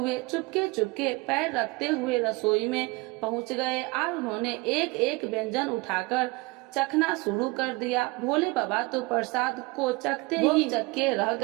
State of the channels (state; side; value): quieter; left; 24.3 dB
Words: चुपके चुपके पैर रखते हुए रसोई में पहुंच गए और उन्होंने एक एक व्यंजन उठाकर चखना शुरू कर दिया। भोले बाबा तो प्रसाद को चखते ही चक्के रह